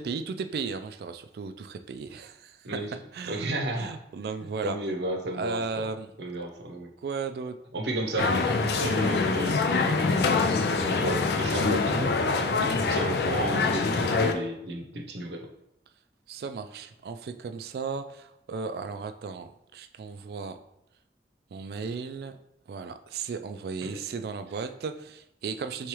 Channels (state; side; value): normal; both; correlation 0.24